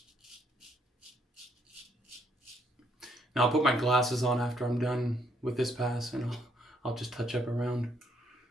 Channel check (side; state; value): both; normal; correlation 0.71